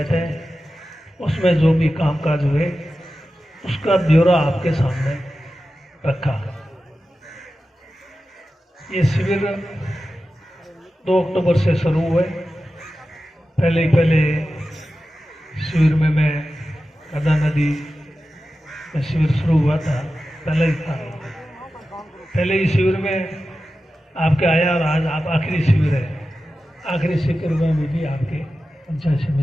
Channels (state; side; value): normal; both; correlation 0.93